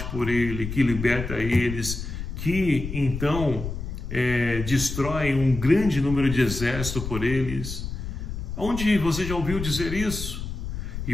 por ele, que liberta eles, que então destrói um grande número de exército por eles? Onde você já ouviu dizer isso? E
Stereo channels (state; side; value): noise; left; rumble, 6 dB below the sound